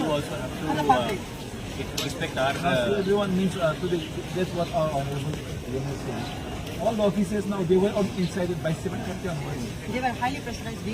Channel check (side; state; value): both; identical; correlation 1.00